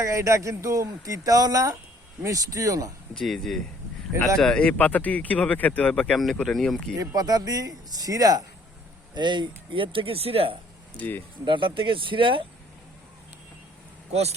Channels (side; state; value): both; normal; correlation 0.60